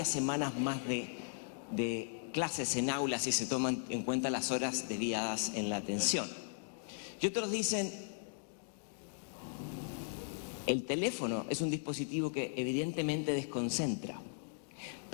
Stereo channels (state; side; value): silent; right; digital silence